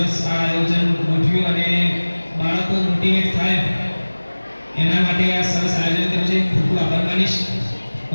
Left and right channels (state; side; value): inverted; both; correlation -1.00